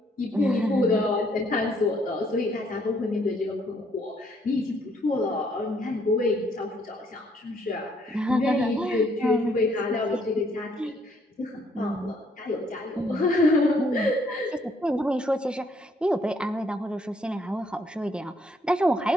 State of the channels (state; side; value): normal; both; correlation 0.68